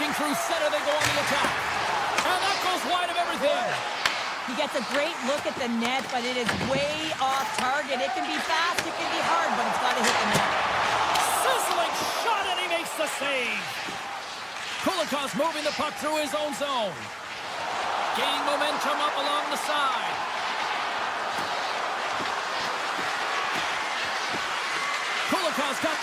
through center, they go on the attack. And that goes wide of everything. He gets a great look at the net, but it is way off target. It can be fast, it can be hard, but it's got to hit the net. Sizzling shot, and he makes the save. Kolikov's moving the puck through his own zone. Gaining momentum up along the side. Kolikov's got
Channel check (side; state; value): both; identical; correlation 1.00